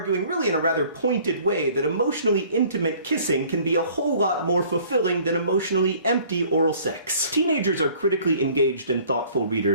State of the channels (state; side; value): inverted; both; correlation -0.54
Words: really in a rather pointed way that emotionally intimate kissing can be a whole lot more fulfilling than emotionally empty oral sex. Teenagers are critically engaged and thoughtful